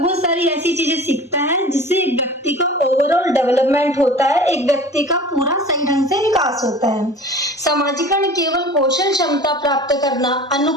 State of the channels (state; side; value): normal; both; correlation 0.40